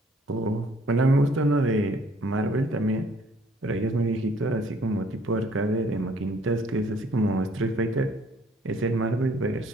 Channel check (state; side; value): normal; both; correlation 0.60